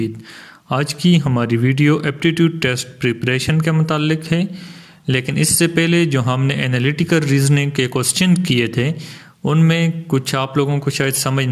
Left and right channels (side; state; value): both; identical; correlation 1.00